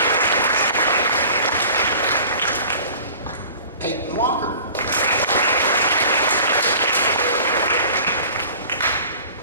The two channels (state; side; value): inverted; both; correlation -0.44